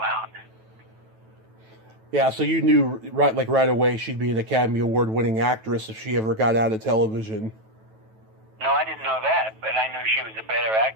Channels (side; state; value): left; late; 9.2 ms